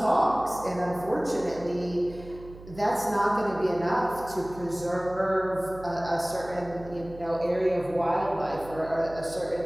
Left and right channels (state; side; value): noise; right; hum, 17 dB below the sound